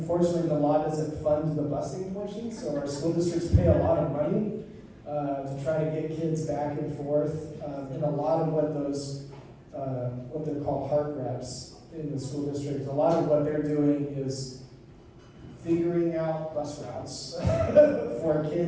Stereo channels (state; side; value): identical; both; correlation 1.00